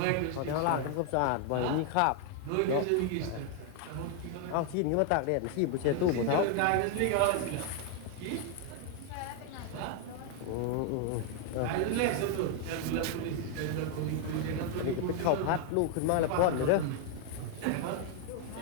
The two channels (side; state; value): both; different; correlation 0.00